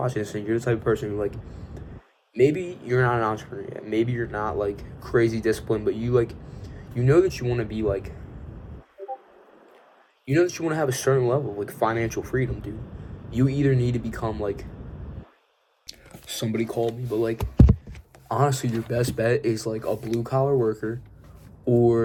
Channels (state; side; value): identical; both; correlation 1.00